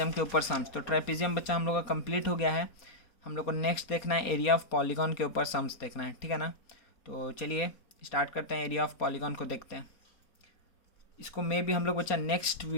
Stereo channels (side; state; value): right; late; 4.2 ms